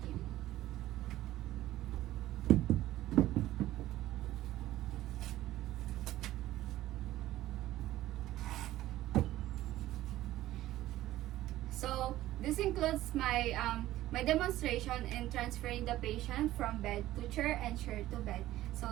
So this includes my demonstration in transferring the patient from bed to chair and chair to bed.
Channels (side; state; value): left; quieter; 14.9 dB